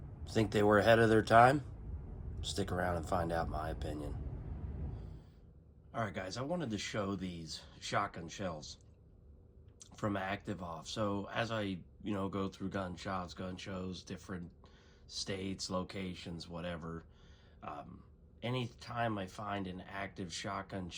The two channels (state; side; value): identical; both; correlation 1.00